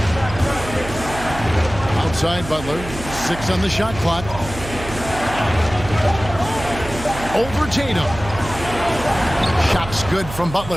Outside Butler. 6 on the shot clock. Over Tatum. Shots good from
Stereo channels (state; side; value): noise; right; hum, 11 dB below the sound